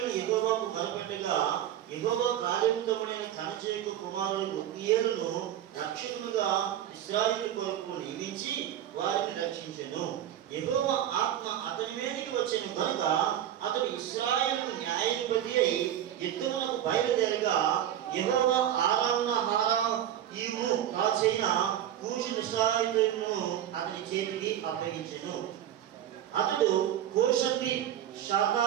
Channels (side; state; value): left; quieter; 11.1 dB